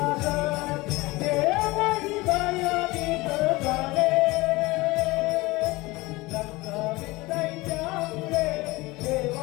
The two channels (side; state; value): right; quieter; 21.7 dB